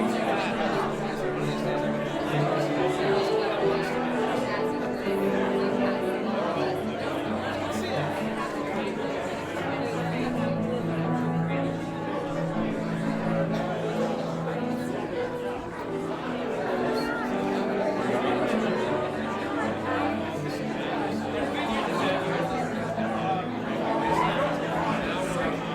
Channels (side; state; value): both; identical; correlation 1.00